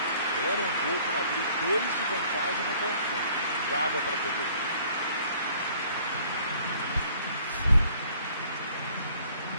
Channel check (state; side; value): inverted; both; correlation -0.57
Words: Era um gol para abrir 2 de vantagem no confronto. Não dava para ter perdido.